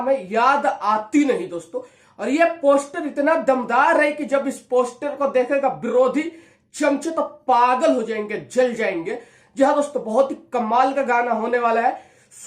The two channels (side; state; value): both; identical; correlation 1.00